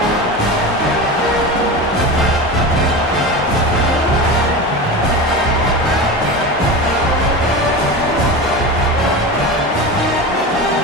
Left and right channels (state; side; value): normal; both; correlation 0.26